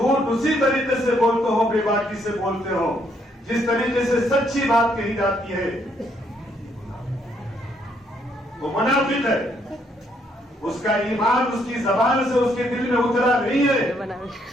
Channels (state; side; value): normal; both; correlation 0.71